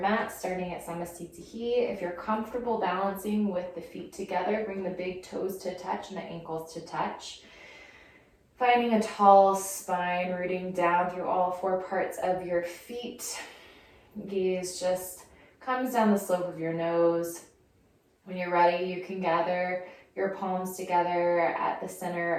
mat, starting at Samastitihi. If you're comfortable balancing with the feet together, bring the big toes to touch and the ankles to touch. Finding a tall spine, rooting down through all four parts of your feet. Gaze just comes down the slope of your nose. When you're ready, you can gather your palms together at the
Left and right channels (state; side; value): identical; both; correlation 1.00